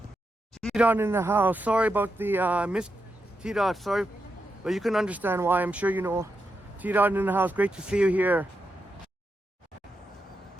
T-Dot in the house. Sorry about the miss T-Dot. Sorry, but you can understand why. I'm sure you know. T-Dot in the house. Great to see you here.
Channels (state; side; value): normal; both; correlation 0.86